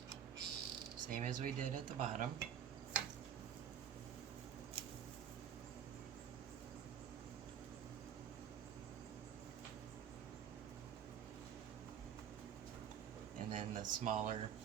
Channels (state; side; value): quieter; left; 8.8 dB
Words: same as we did at the bottom. And then the smaller